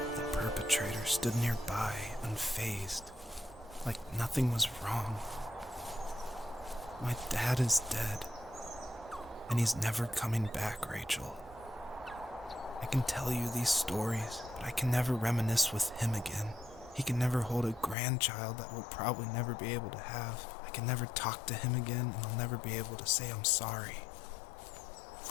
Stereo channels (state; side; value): drops out; right; at 17.9 s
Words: The perpetrator stood nearby, unfazed, like nothing was wrong. My dad is dead, and he's never coming back, Rachel. I can tell you these stories, but I can never reminisce with him again. He can never hold a grandchild that we'll probably never be able to have. I can never talk to him again, and I'll never be able to say I'm sorry